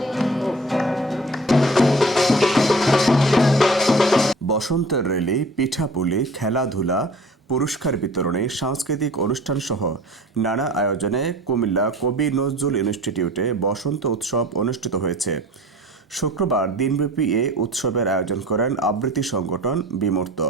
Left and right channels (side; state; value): both; normal; correlation 0.45